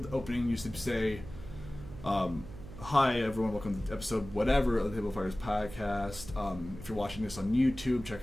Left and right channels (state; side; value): noise; right; hum, 14 dB below the sound